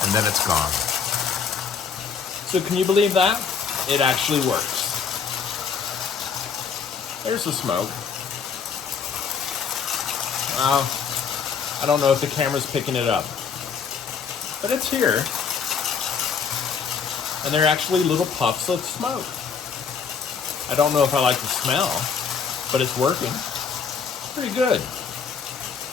And then it's gone. So can you believe that? It actually works. There's the smoke. I don't know if the camera's picking it up. But it's here. And they're actually little puffs of smoke. I don't know if I like the smell, but it's working. Pretty good.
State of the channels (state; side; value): quieter; right; 6.3 dB